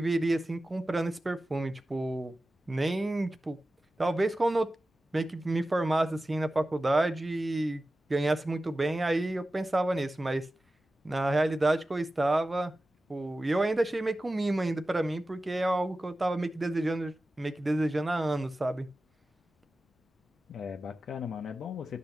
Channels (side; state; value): both; normal; correlation 0.95